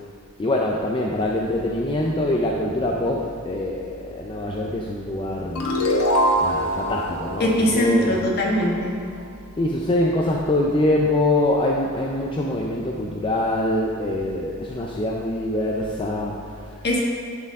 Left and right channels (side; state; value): both; normal; correlation 0.37